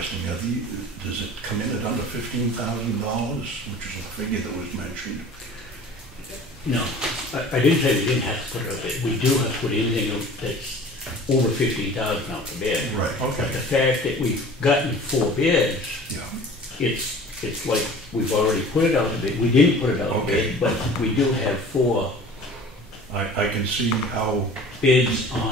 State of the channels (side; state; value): both; normal; correlation 0.44